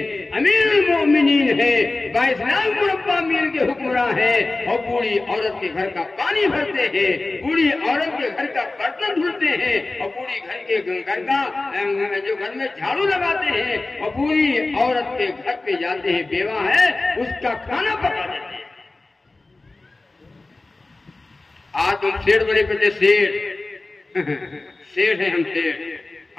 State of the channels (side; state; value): right; quieter; 3.2 dB